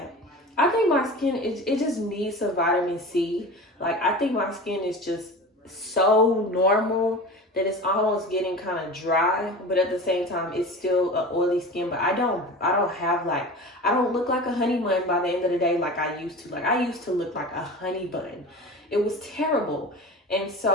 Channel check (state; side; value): normal; both; correlation 0.34